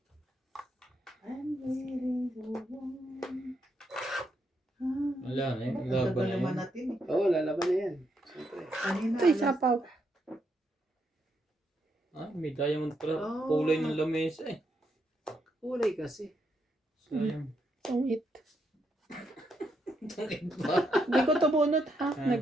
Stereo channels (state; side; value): normal; both; correlation 0.79